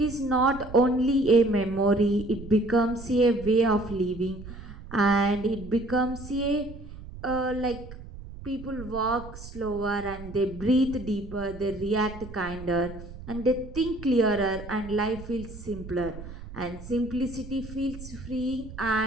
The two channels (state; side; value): noise; right; rumble, 13 dB below the sound